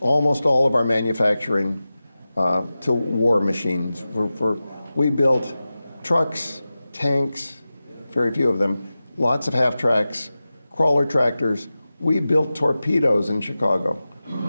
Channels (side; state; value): both; inverted; correlation -0.95